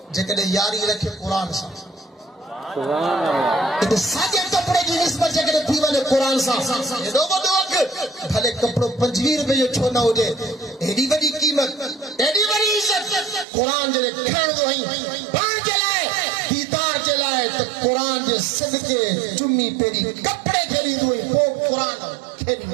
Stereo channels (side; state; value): left; drops out; at 13.5 s